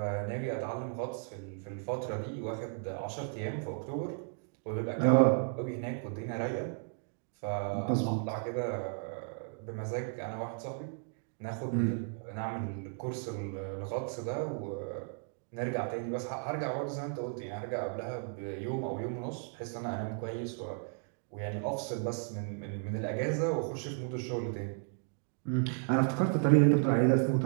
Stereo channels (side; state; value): left; silent; 55 dB below the other